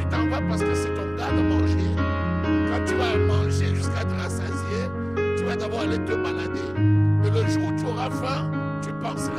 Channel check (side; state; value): right; noise; rumble, 21 dB below the sound